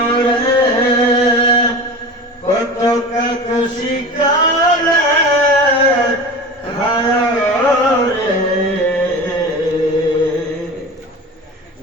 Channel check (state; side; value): normal; both; correlation 0.32